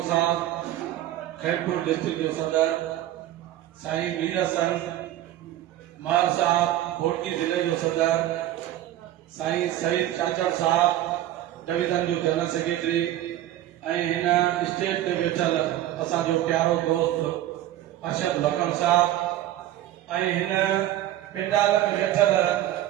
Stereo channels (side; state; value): left; quieter; 13.4 dB